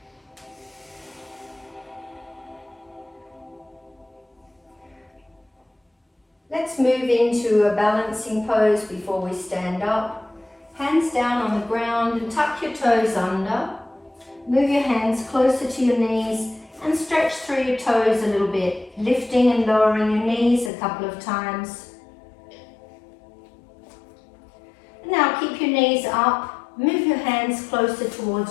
Let's move into a balancing pose before we stand up. Hands down on the ground and tuck your toes under. Move your hands closer to your knees and stretch through your toes a little bit, lifting and lowering your knees a couple of times. Now keep your knees up, move your hands closer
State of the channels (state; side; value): drops out; right; at 20.7 s